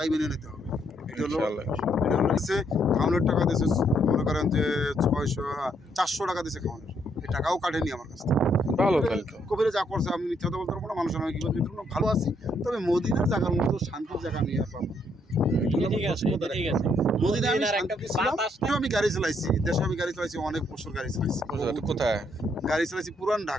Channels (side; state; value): both; normal; correlation 0.72